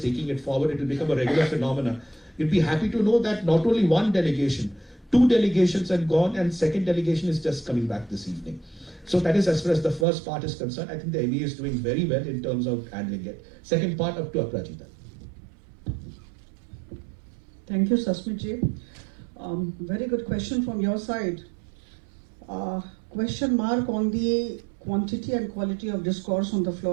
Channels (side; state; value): left; drops out; at 10.1 s